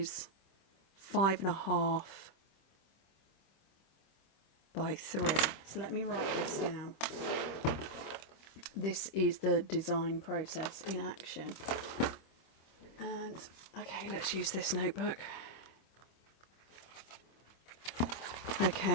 5 1/2 by 3. So let me write this down. This is the design process in action. And okay, let's use this notebook.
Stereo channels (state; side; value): late; right; 26 ms